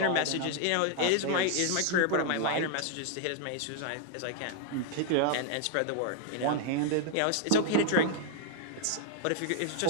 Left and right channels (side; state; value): both; different; correlation 0.00